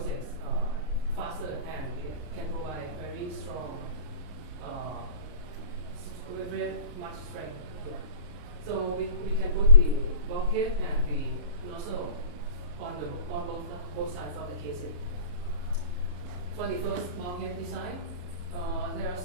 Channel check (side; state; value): left; late; 34 ms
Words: faster, and it can provide very strong, very much strength here. So we can put the bulkhead and the nozzle on both sides of the casing. For the first bulkhead design, there are